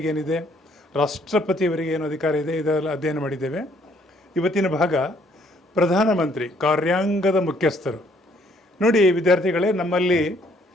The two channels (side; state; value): both; normal; correlation 0.65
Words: ಏನಿದೆ, ರಾಷ್ಟ್ರಪತಿಯವರಿಗೆ ಏನು ಅಧಿಕಾರ ಇದೆ, ಇದೆಲ್ಲ ಅಧ್ಯಯನ ಮಾಡಿದ್ದೇವೆ. ಇವತ್ತಿನ ಭಾಗ ಪ್ರಧಾನಮಂತ್ರಿ, ಕಾರ್ಯಾಂಗದ ಮುಖ್ಯಸ್ಥರು. ನೋಡಿ ವಿದ್ಯಾರ್ಥಿಗಳೇ, ನಮ್ಮಲ್ಲಿ